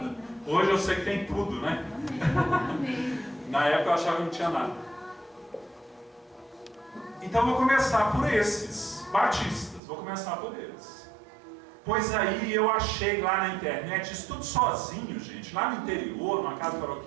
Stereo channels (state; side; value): drops out; left; at 9.8 s